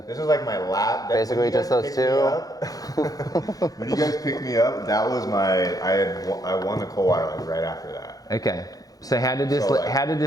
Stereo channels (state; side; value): late; right; 0.18 ms